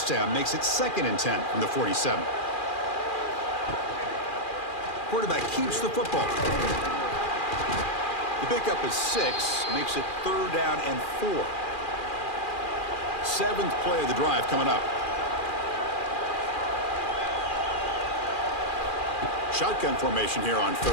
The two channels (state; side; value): late; right; 2.4 ms